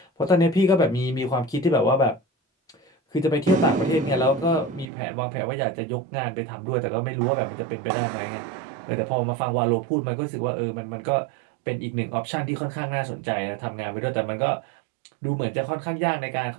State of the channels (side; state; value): left; drops out; at 4.9 s